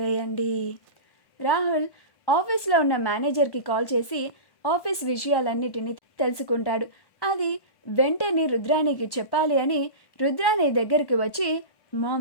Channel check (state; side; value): late; right; 1.1 ms